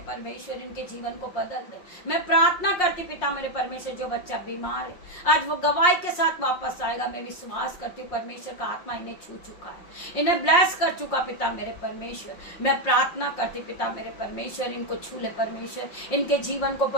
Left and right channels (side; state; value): right; late; 5.6 ms